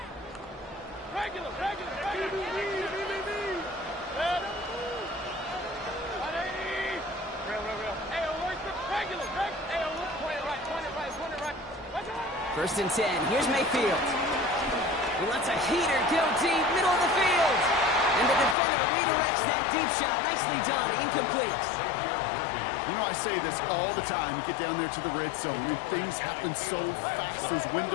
First and 10. Here's Mayfield. He lets a heater go deep, middle of the field. And the defender redirects that deep shot. Nicely done. Incomplete. You know, I say this all the time. You get down there to the red zone, and things happen so fast. Those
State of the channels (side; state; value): right; drops out; at 18.6 s